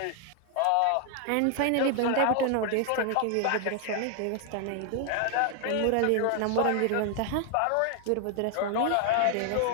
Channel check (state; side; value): different; both; correlation 0.00